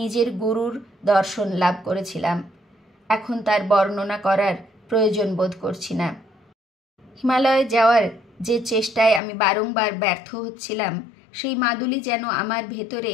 নিজের গুরুর দর্শন লাভ করেছিলাম। এখন তার বর্ণনা করার প্রয়োজন বোধ করছি না। হিমালয়ে যাওয়ার যে চেষ্টায় আমি বারংবার ব্যর্থ হচ্ছিলাম, সেই মাদুলি যেন আমার ভেতরে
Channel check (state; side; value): drops out; right; at 9.2 s